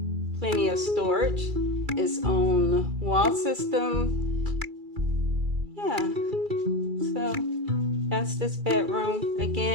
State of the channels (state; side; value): late; left; 2.3 ms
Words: plenty of storage. Its own wall system. Yeah, so that's this bedroom.